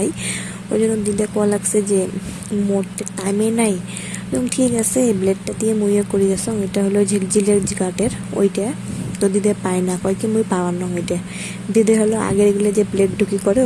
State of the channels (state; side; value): identical; both; correlation 1.00